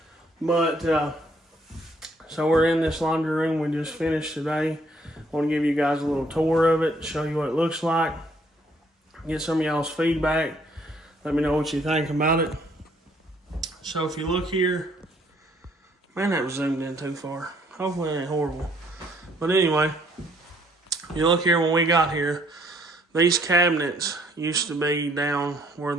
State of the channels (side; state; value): both; normal; correlation 0.65